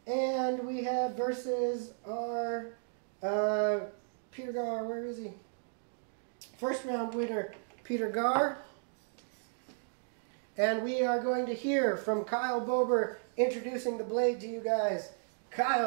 and we have versus our Peter Gar. Where is he? First round winner, Peter Gar. And we are going to hear from Kyle Bober introducing the blade to you guys.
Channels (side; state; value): left; silent; digital silence